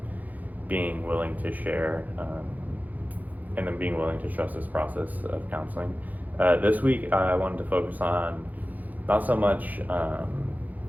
being willing to share, and then being willing to trust this process of counseling. This week, I wanted to focus on not so much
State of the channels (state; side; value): late; left; 0.081 ms